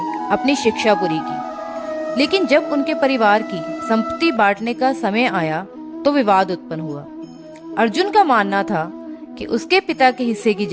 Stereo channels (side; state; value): both; identical; correlation 1.00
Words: अपनी शिक्षा पूरी की, लेकिन जब उनके परिवार की संपत्ति बांटने का समय आया तो विवाद उत्पन्न हुआ। अर्जुन का मानना था कि उसके पिता के हिस्से की